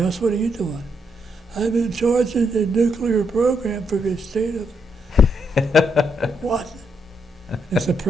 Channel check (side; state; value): both; normal; correlation 0.77